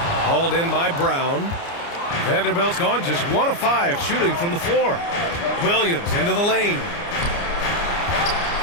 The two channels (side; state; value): right; late; 29 ms